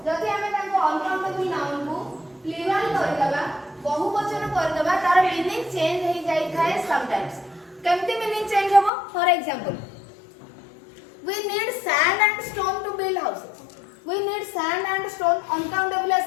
जदि हमें ताको uncountable noun को plural कर दबा बहुवचन कर दबा तार मीनिंग चेंज हो जाई थाए समटाइम्स केमती मीनिंग चेंज होबो for example we need sand and stone to build houses we need sand and stone uncountable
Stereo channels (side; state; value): right; drops out; at 8.9 s